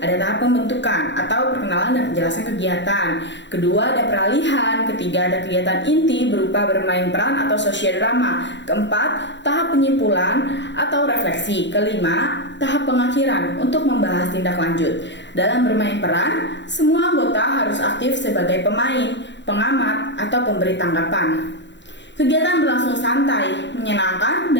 ada tahap pembentukan atau perkenalan dan penjelasan kegiatan. Kedua ada peralihan, ketiga ada kegiatan inti berupa bermain peran atau sosiodrama. Keempat, tahap penyimpulan atau refleksi. Kelima, tahap pengakhiran untuk membahas tindak lanjut. Dalam bermain peran, semua anggota harus aktif sebagai pemain, pengamat, atau pemberi tanggapan. Kegiatan berlangsung santai, menyenangkan,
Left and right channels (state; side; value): late; right; 0.52 ms